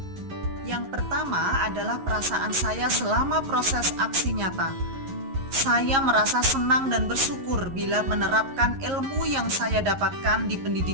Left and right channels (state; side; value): late; left; 11 ms